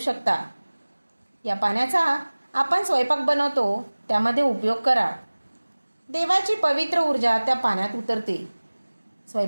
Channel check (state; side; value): inverted; both; correlation -1.00